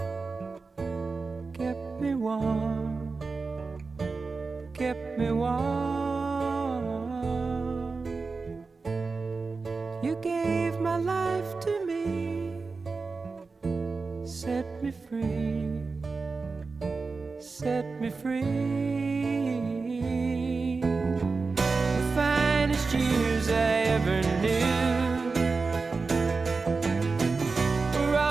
kept me warm, kept me warm. You gave my life to me, set me free, set me free. The finest years I ever knew were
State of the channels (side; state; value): left; quieter; 4.2 dB